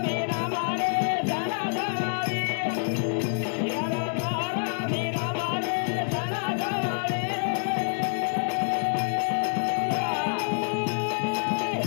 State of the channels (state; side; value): silent; right; digital silence